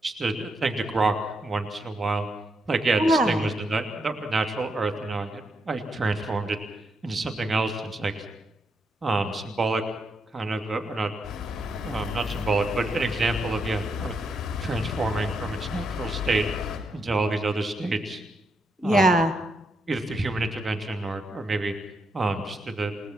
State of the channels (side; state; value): both; normal; correlation 0.80